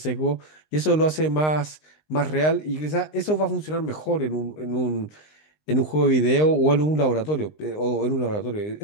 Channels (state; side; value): late; right; 19 ms